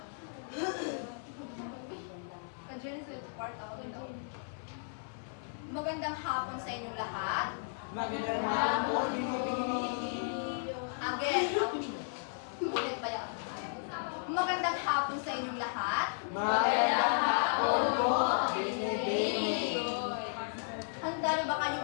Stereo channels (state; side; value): silent; right; 55 dB below the other